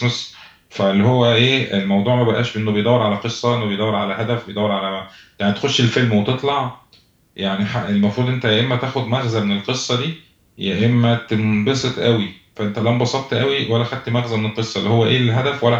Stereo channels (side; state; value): both; identical; correlation 1.00